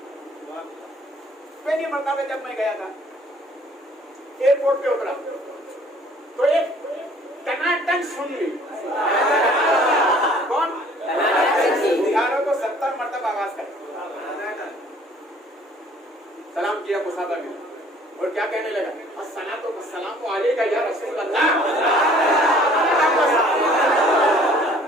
पहली मरतबा जब मैं गया था, एयरपोर्ट पे उतरा तो एक टनाटन सुन ली। कौन? बिहारों को 70 मरतबा आवाज कर सलाम किया मुसाफिर ने, और क्या कहने लगा, अस्सलातु वस्सलामु अलैका या रसूल अल्लाह,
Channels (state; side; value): normal; both; correlation 0.55